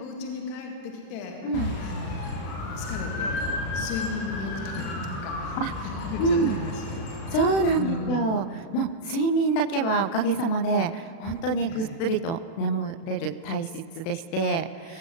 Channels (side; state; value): right; late; 36 ms